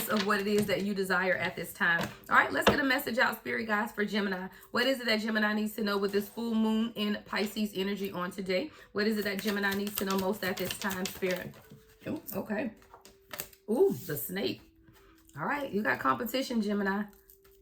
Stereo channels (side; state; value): both; identical; correlation 1.00